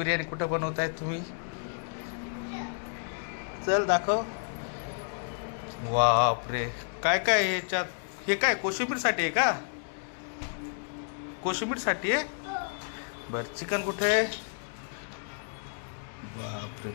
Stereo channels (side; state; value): right; silent; digital silence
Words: कुठं बनवताय तुम्ही. चल दाखव. बापरे काय काय ह्याच्यात. हे काय कोशिंबीर साठी आहे का? कोशिंबीर साठी आहे. बर चिकन कुठे आहे? बापरे